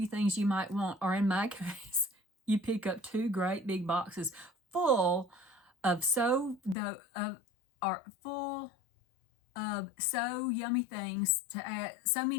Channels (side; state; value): right; drops out; at 6.8 s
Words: things you might want, or in my case, you pick up 2 great big boxes full of so yummy things to add, so